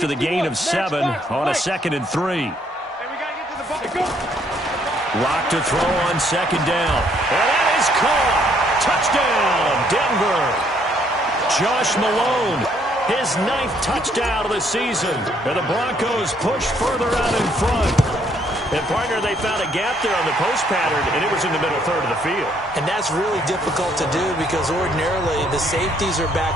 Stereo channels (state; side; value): normal; both; correlation 0.68